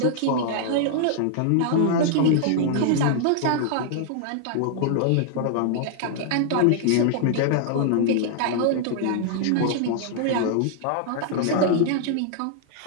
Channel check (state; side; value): different; both; correlation -0.01